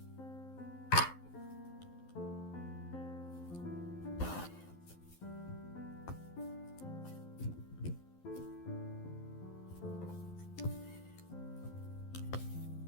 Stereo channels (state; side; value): late; right; 12 ms